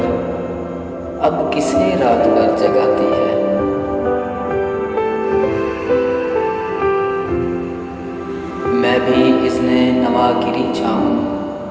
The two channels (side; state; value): both; identical; correlation 1.00